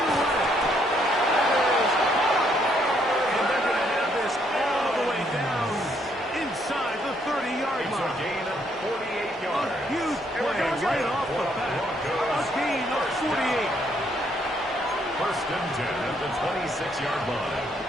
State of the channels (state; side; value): normal; both; correlation 0.71